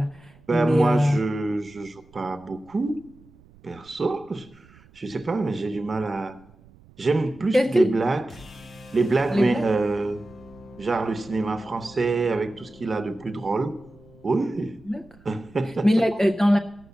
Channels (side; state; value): right; noise; rumble, 26 dB below the sound